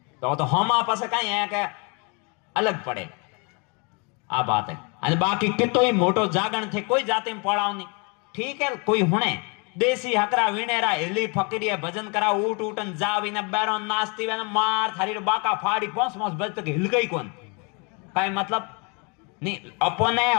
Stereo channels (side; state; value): right; quieter; 32.8 dB